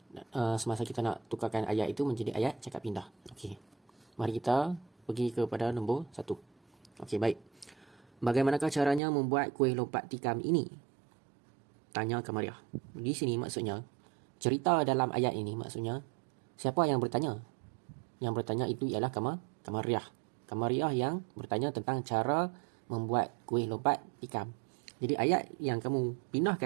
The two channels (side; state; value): left; drops out; at 9.0 s